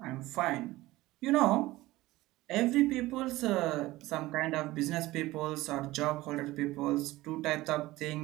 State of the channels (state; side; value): quieter; left; 18.2 dB